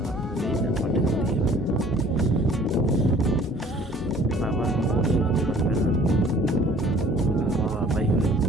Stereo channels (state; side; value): normal; both; correlation 0.53